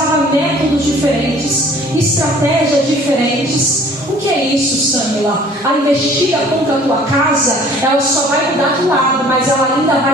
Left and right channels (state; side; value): normal; both; correlation 0.52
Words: métodos diferentes, estratégias diferentes. O que é isso, Samila? A investida contra a tua casa, ela só vai mudar de lado, mas ela ainda vai